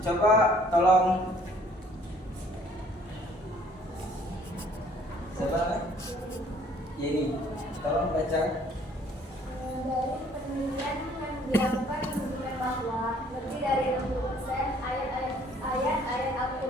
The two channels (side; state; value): both; normal; correlation 0.59